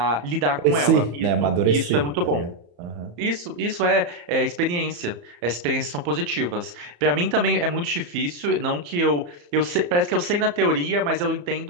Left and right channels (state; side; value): late; left; 34 ms